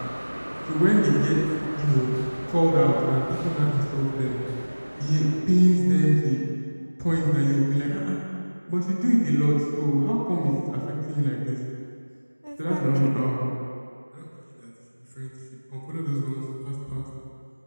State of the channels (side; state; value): both; inverted; correlation -1.00